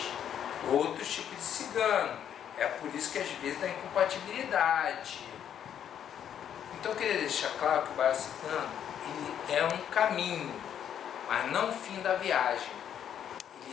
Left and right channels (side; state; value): right; quieter; 9.4 dB